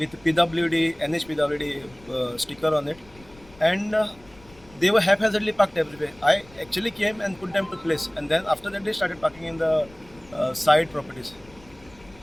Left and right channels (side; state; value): left; noise; rumble, 25 dB below the sound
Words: PWD, NHPWD sticker on it, and they were haphazardly parked everywhere. I actually came and put them to place, and then after that they started parking in the side properties.